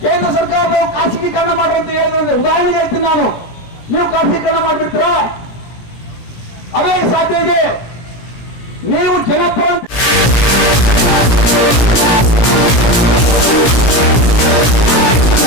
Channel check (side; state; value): right; late; 17 ms